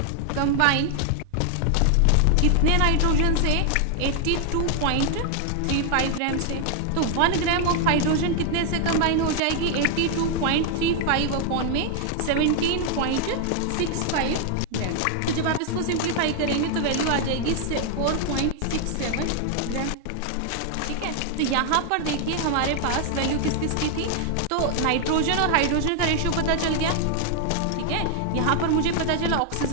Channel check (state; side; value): different; both; correlation 0.00